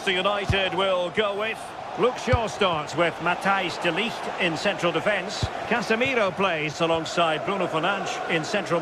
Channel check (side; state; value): both; identical; correlation 1.00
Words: United will go with. Luke Shaw starts with Matthijs de Ligt in central defence. Casemiro plays alongside Bruno Fernandes in central